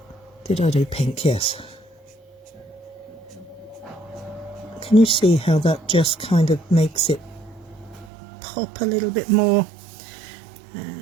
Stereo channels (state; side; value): drops out; left; at 8.1 s